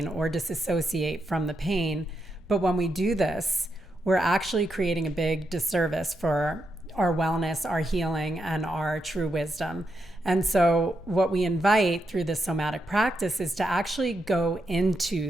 or disassociate from the pain. But when we do this, we're actually creating a big disservice for our wellness, our healing, and our true wisdom. And so what we invite through this somatic practice is to actually go into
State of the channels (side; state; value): both; normal; correlation 0.83